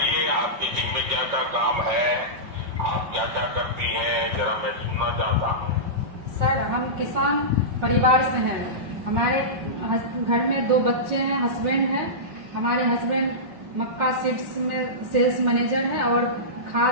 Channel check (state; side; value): late; left; 5.5 ms